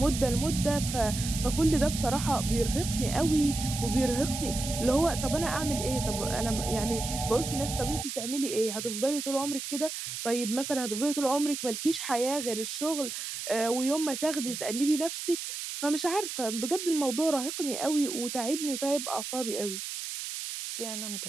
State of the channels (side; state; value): right; noise; hiss, 6 dB below the sound